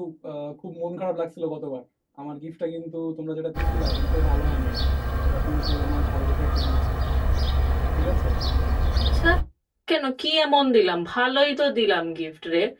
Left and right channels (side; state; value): both; identical; correlation 1.00